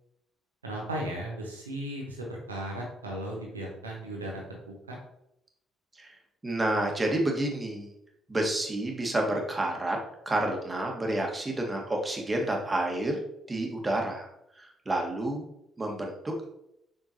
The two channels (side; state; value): both; normal; correlation 0.78